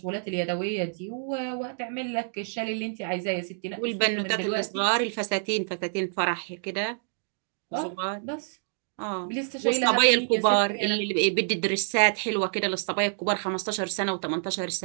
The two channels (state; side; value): silent; left; digital silence